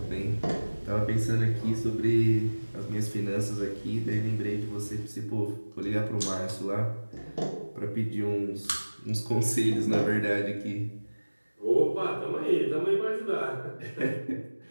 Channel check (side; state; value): both; inverted; correlation -1.00